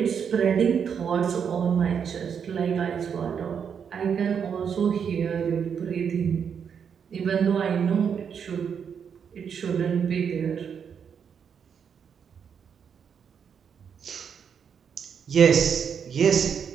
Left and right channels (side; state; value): left; quieter; 7.2 dB